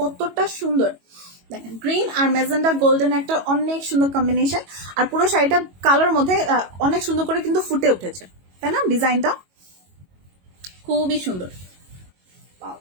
সুন্দর। দেখেন গ্রিন আর মেজেন্ডা গোল্ডেন একটা অনেক সুন্দর কম্বিনেশন, আর পুরো শাড়িটা কালার মধ্যে অনেক সুন্দর করে কিন্তু ফুটে উঠেছে, তাই না? ডিজাইনটা খুবই সুন্দর।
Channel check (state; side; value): late; left; 22 ms